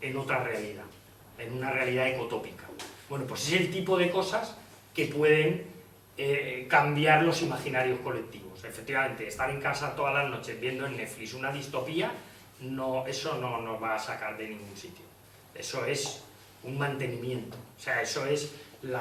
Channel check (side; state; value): both; identical; correlation 1.00